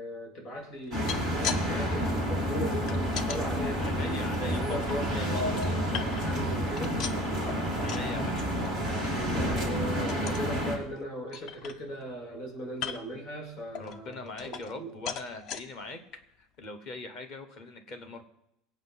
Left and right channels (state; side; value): normal; both; correlation 0.46